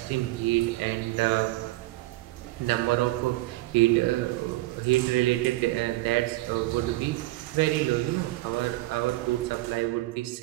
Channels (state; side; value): quieter; left; 18.7 dB